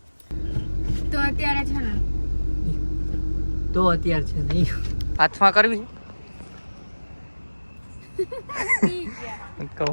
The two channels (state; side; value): inverted; both; correlation -1.00